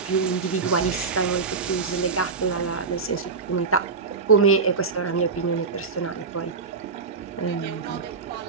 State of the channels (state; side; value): quieter; left; 4.8 dB